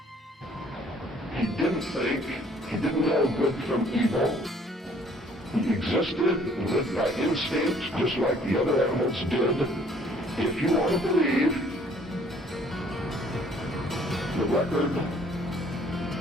He didn't think, he didn't know good from evil. He existed and lived by instinct just like the other animals did. If you want to believe the record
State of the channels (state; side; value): normal; both; correlation 0.59